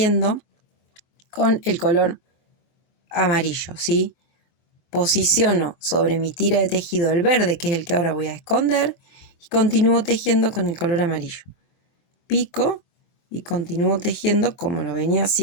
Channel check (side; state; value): right; late; 24 ms